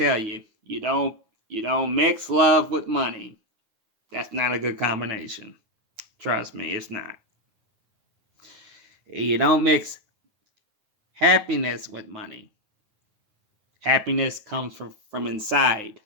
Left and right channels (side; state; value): left; late; 9.5 ms